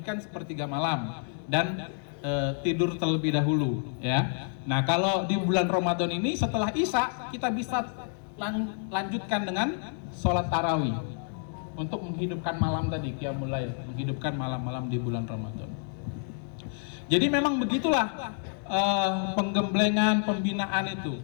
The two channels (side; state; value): right; silent; 57 dB below the other